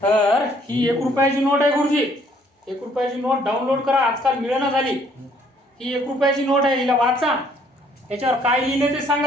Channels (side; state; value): both; normal; correlation 0.63